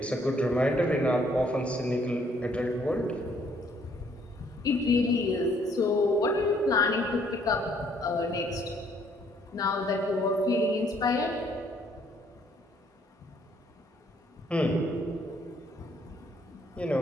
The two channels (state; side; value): normal; both; correlation 0.65